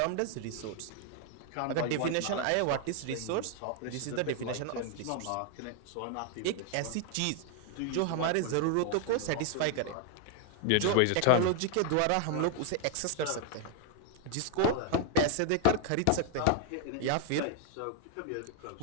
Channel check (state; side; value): different; both; correlation 0.00